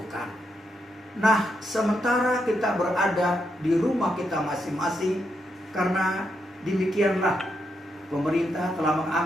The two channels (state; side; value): normal; both; correlation 0.81